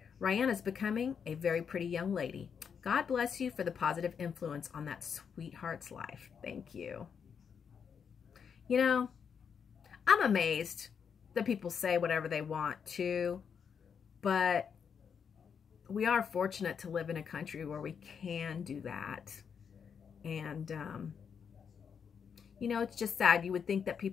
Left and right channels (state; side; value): quieter; right; 6.9 dB